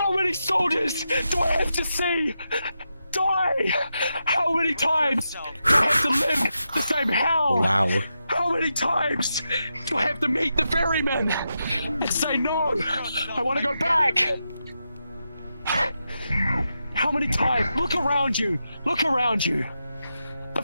many soldiers do I have to see die? How many times do I have to live the same hell? Wow. How many times do I have to meet the ferryman and say no? I want to go back. How many times? Look around you. Look around you. The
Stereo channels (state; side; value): inverted; both; correlation -0.87